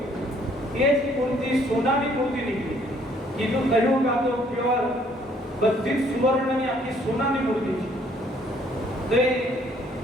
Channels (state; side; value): normal; both; correlation 0.63